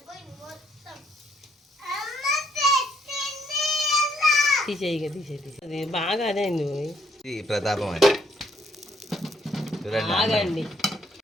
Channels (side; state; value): both; normal; correlation 0.70